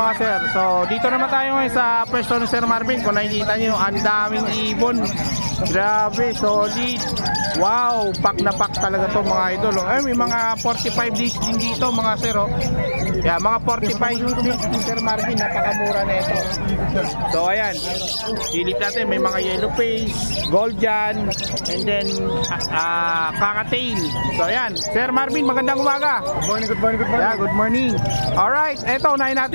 sir. So dito naman tayo ngayon sa pwesto ni Sir Marvin. Kung nakikita nyo, ang daming ibon. Grabe, solid. Wow, pack na pack talaga to mga idol. Oh. Ay, may mga 45 days din dito mga sir. Oh. Yeah, mga 45 days ni Sir Marvin. Napakamura na ito. So ayan, silip natin. May mga yellow face, gold dyan, and then kakatail. So ayan, Sir Marvin, magandang umaga. Good morning, good morning, good morning. Yeah, good morning. Alright, eto, unahin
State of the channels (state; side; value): inverted; both; correlation -1.00